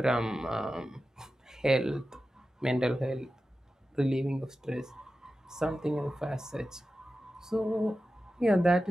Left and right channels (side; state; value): both; normal; correlation 0.93